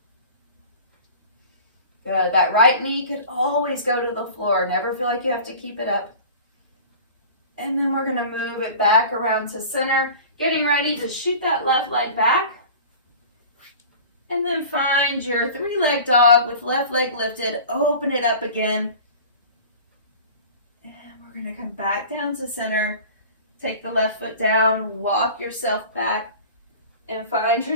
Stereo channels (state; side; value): inverted; both; correlation -0.40